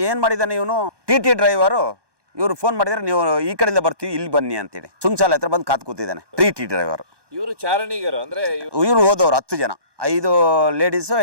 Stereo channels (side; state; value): left; late; 1.2 ms